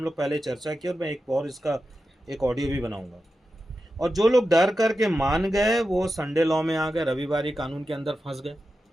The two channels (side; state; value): both; normal; correlation 0.91